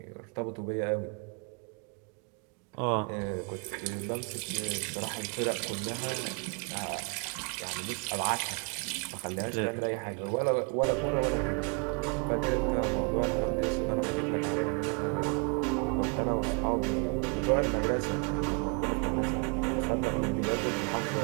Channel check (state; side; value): quieter; left; 35.3 dB